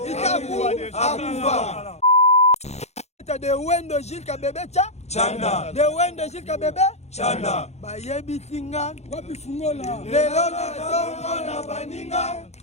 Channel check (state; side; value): late; right; 0.32 ms